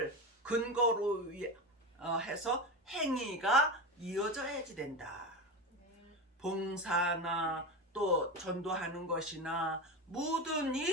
근거로 해서 행위가 이어져야지 된다. 봉사나 또 전도하는 것이나 모든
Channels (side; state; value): both; normal; correlation 0.21